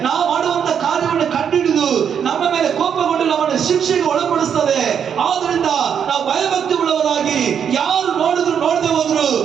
ನಾವು ಮಾಡುವಂತ ಕಾರ್ಯವನ್ನು ಕಂಡುಹಿಡಿದು ನಮ್ಮ ಮೇಲೆ ಕೋಪಗೊಂಡು ನಮ್ಮನ್ನು ಶಿಕ್ಷೆಗೆ ಒಳಪಡಿಸ್ತದೆ. ಆದ್ರಿಂದ ನಾವು ಭಯಭಕ್ತಿ ಉಳ್ಳವರಾಗಿ ಯಾರು ನೋಡಿದ್ರು ನೋಡದೆ ಹೋದ್ರು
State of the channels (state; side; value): quieter; left; 7.9 dB